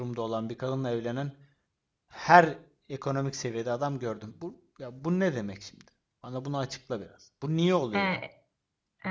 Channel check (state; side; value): identical; both; correlation 1.00